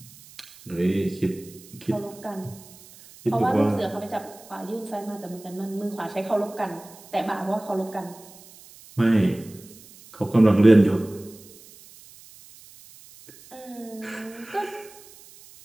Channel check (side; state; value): right; noise; hiss, 21 dB below the sound